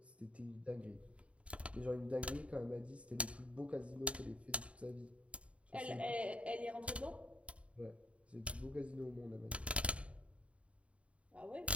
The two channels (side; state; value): left; late; 0.063 ms